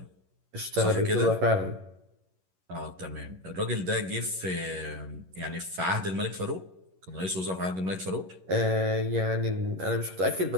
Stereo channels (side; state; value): left; late; 11 ms